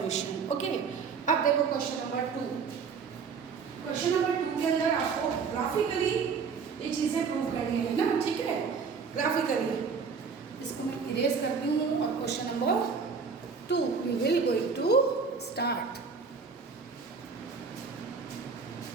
Okay. अब देखो क्वेश्चन नंबर 2. क्वेश्चन नंबर 2 के अंदर आपको ग्राफिकली ये चीज़ें प्रूव करनी है ना. ठीक है. ग्राफिकली इसको मैं इरेज करती हूँ और question number 2 we will going to start.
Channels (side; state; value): left; quieter; 5.5 dB